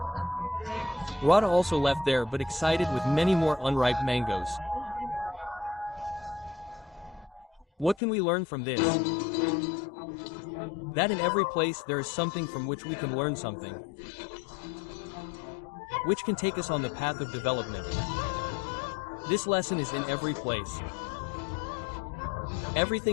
Radha also left there but excited with many more unripe mangoes. What can we learn from this? That in every place there is something from which we can learn something, which can take us on the path of development. This lesson is in every place.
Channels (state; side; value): drops out; right; at 8.0 s